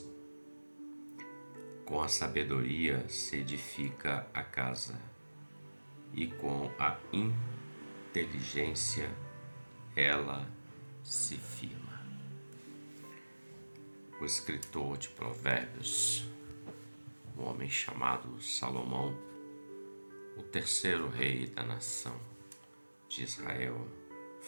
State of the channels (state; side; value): inverted; both; correlation -1.00